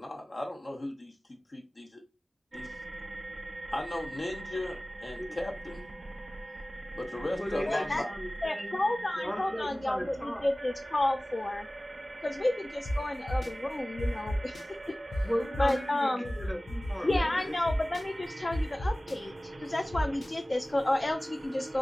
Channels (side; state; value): both; normal; correlation 0.98